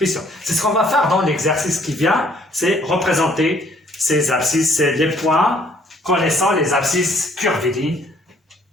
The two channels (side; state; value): both; normal; correlation 0.62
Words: sur 7. C'est ce qu'on va faire dans l'exercice qui vient, c'est représenter ces abscisses, c'est les points connaissant les abscisses curvilignes,